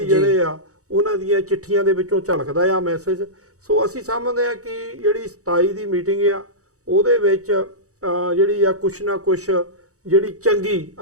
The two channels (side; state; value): left; late; 0.66 ms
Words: ਆ ਉਹਨਾਂ ਦੀਆਂ ਚਿੱਠੀਆਂ ਦੇ ਵਿੱਚੋਂ ਝਲਕਦਾ ਆ ਮੈਸੇਜ। ਸੋ ਅਸੀਂ ਸਮਝਦੇ ਆ ਕਿ ਜਿਹੜੀ 27 ਦੀ ਮੀਟਿੰਗ ਆ ਉਹਦੇ ਵਿੱਚ ਜਿਹੜੀ ਆ ਕੁਛ ਨਾ ਕੁਛ ਜਿਹੜੀ ਚੰਗੀ